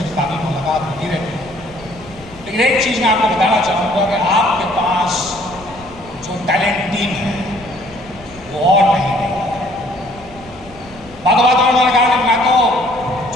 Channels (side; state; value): left; noise; rumble, 21 dB below the sound